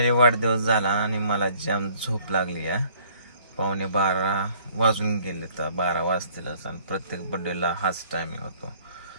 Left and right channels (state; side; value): inverted; both; correlation -0.58